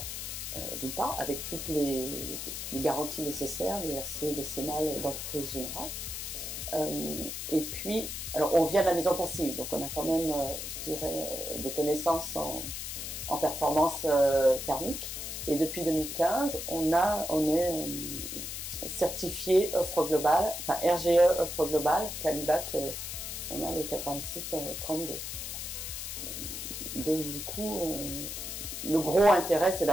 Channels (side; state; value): left; noise; hiss, 6 dB below the sound